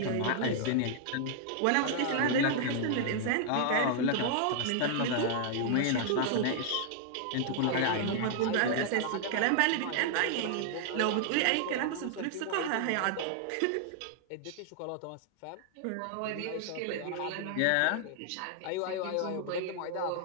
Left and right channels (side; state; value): both; different; correlation 0.00